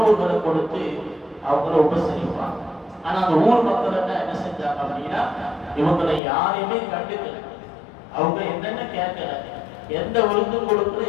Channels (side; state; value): right; drops out; at 6.2 s